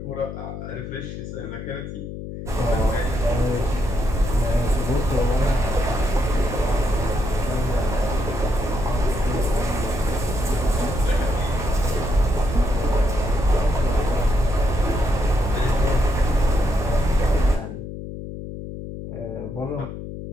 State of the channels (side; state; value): left; noise; hum, 9 dB below the sound